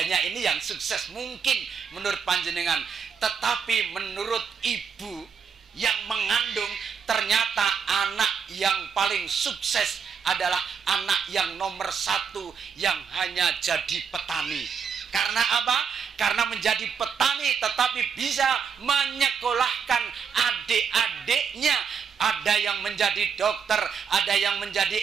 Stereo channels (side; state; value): left; quieter; 6.6 dB